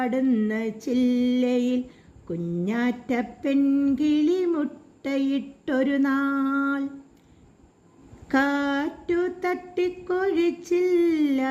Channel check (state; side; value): identical; both; correlation 1.00